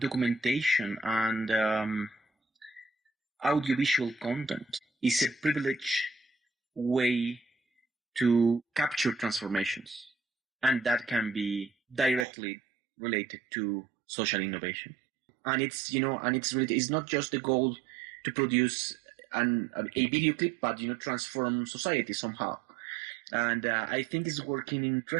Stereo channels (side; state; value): left; drops out; at 12.2 s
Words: and audiovisual content is a privileged way to capture transformations, and that can be directly related to social innovation. And it's it's not just the goal to produce a video clip, but transform society somehow. And I think it's working